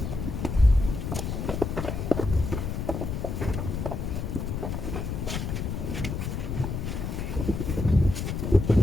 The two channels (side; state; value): left; noise; rumble, 3 dB below the sound